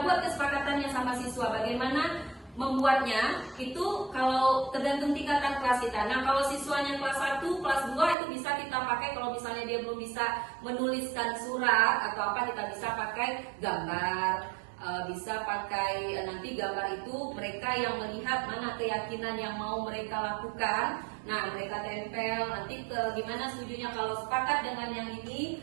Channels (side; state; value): left; drops out; at 8.2 s